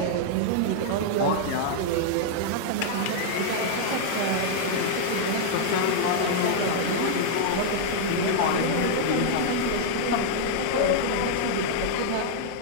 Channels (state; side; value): different; both; correlation -0.01